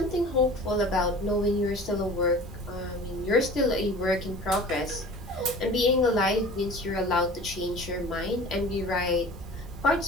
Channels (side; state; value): both; normal; correlation 0.42